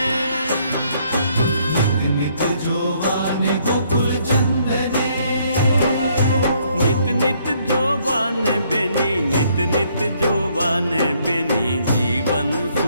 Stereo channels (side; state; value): both; inverted; correlation -0.67